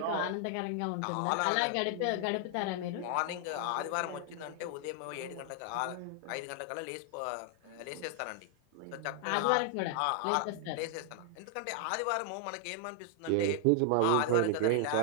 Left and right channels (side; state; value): both; different; correlation 0.00